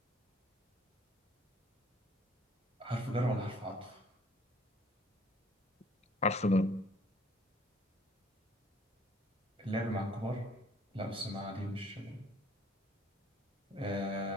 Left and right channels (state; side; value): normal; both; correlation 0.57